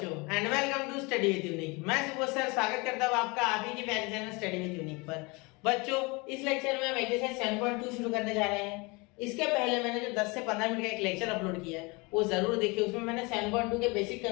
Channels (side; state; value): right; quieter; 27.1 dB